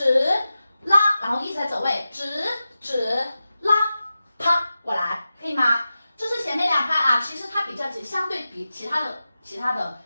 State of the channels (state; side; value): inverted; both; correlation -0.93